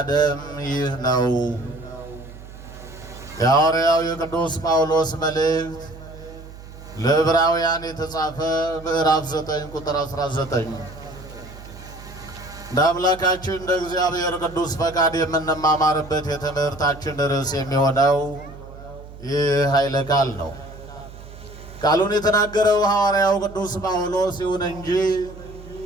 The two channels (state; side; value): noise; right; hum, 16 dB below the sound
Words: ደም ይህ ነው። የሐዋርያው የቅዱስ ጳውሎስ መልእክት ለዕብራውያን የተጻፈ ምዕራፍ 9 ቁጥር 19። እንደ አምላካችን እንደ እግዚአብሔር ቅዱስ ፈቃድ የምንማማርበት የትምህርታችን ርዕስ የሚሆነው ይህ ኃይለ ቃል ነው። ቃሉን የተናገረው ሐዋርያው ቅዱስ ጳውሎስ ይሁን እንጂ